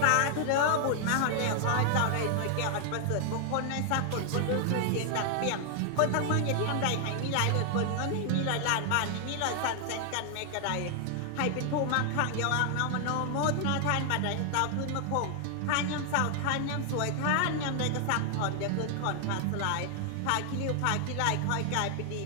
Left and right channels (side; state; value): both; different; correlation 0.00